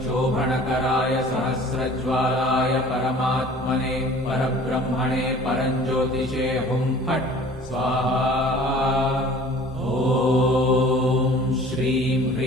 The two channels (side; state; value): both; normal; correlation 0.48